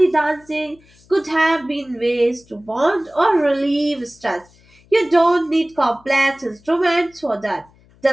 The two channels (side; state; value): left; noise; hum, 30 dB below the sound